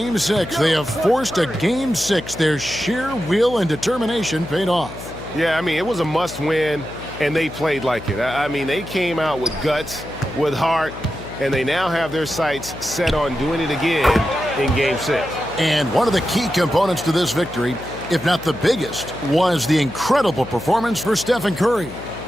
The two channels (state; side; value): noise; left; hum, 13 dB below the sound